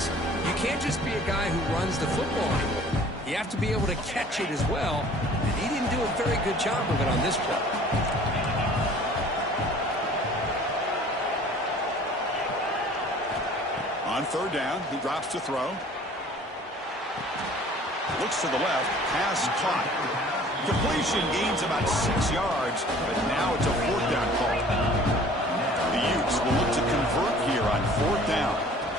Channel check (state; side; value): normal; both; correlation 0.50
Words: You can't just be a guy who runs the football anymore. You have to be able to catch it as well. And he didn't do a very good job of it on this play. On 3rd down, he drops to throw. Looks to the left. Pass caught. Completion gains about 6 yards, but now it's a 4th down call. The Utes will look to convert here on 4th down.